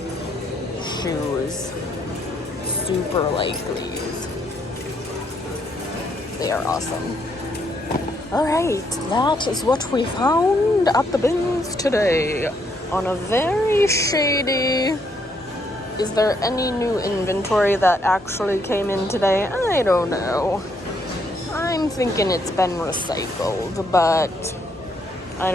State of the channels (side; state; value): both; normal; correlation 0.73